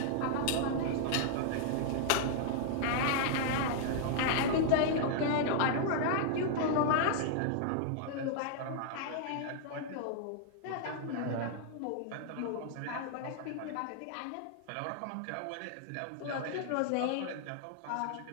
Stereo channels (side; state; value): both; different; correlation -0.01